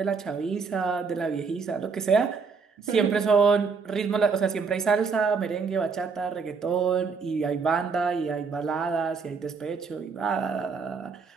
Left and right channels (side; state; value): left; quieter; 5.2 dB